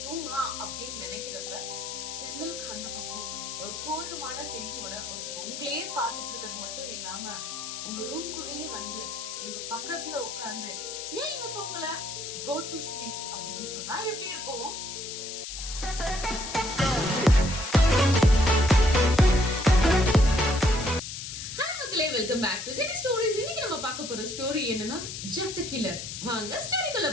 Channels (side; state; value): left; noise; hiss, 7 dB below the sound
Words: தூங்கலாம் அப்படின்னு நினைக்கிறப்ப ஜன்னலுக்கு அந்த பக்கம் ஒரு கோரமான ஃபேஸோட ஒருத்தங்க உங்களையே பார்த்துட்டு இருக்கிறது மட்டும் இல்லாம உங்க ரூம்குள்ளேயே உங்க பக்கத்துல உட்கார்ந்து, ஏன் இன்னும் தூங்கல, கோ டு ஸ்லீப் அப்படின்னு சொன்னா எப்படி இருக்கும்? Welcome back to Jenny stories. இன்னைக்கு நம்ம பார்க்க போற ஸ்டோரி என்னன்னா ஜெஃப் தி கில்லர். வாங்க ஸ்டோரிக்குள்ள